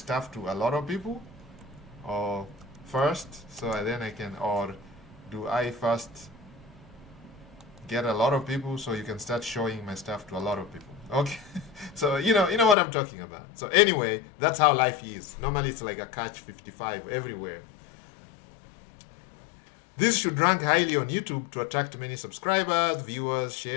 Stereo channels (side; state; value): right; drops out; at 12.8 s